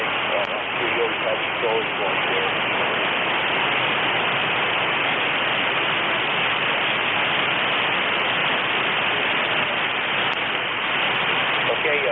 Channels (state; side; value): noise; right; hum, 28 dB below the sound